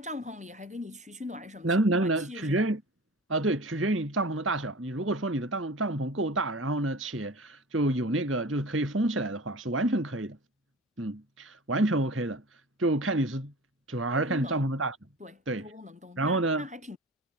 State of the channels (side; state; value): both; normal; correlation 0.37